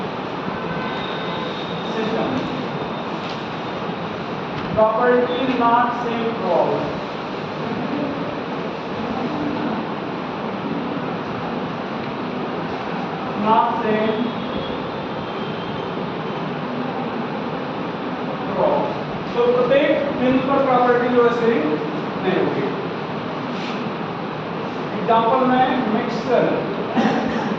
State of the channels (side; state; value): both; identical; correlation 1.00